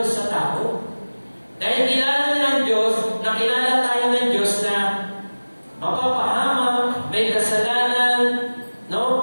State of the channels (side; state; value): both; inverted; correlation -1.00